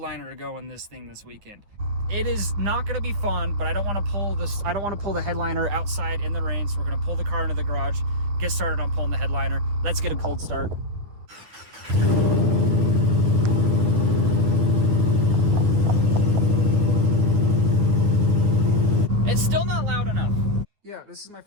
to go in this thing this weekend. It is not going to be fun, but I don't want to pull this. I don't want to pull the headliner outside in the rain, so we're going to pull the car into the garage, get started on pulling the headliner. Let's get a cold start. It's still not loud enough. Yeah, this is my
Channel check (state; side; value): late; left; 9.6 ms